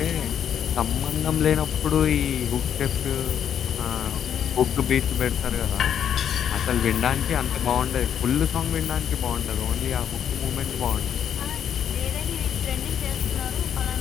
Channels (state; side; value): quieter; right; 9.0 dB